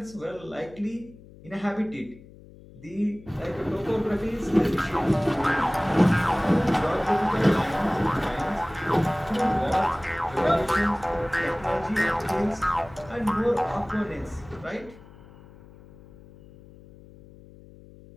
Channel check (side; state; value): left; noise; hum, 21 dB below the sound